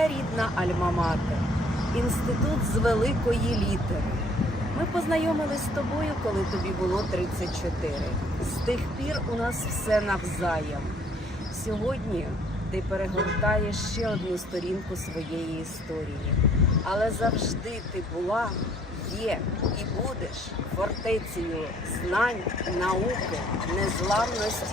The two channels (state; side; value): normal; both; correlation 0.61